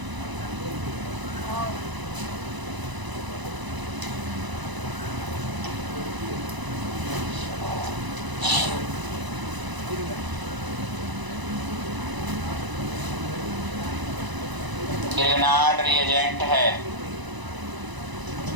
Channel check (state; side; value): late; left; 1.0 ms